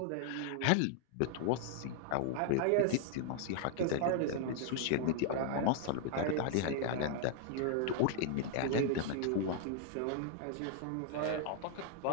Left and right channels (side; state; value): both; different; correlation -0.01